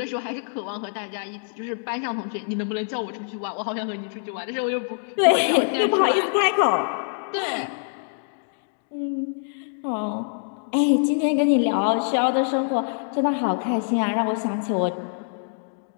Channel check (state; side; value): silent; right; digital silence